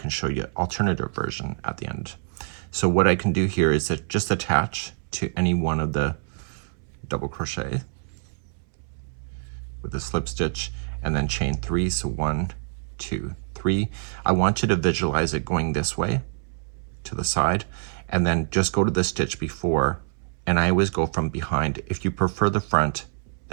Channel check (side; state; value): left; silent; 61 dB below the other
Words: show you an alternative version at the end. So what I can do here is that just attach to any one of the double crochet with a slip stitch and then chain 3. So 1, 2, 3. I want you to visualize it going this way to the side, and then just go to the stitch before, and I always go from behind. If you prefer the front,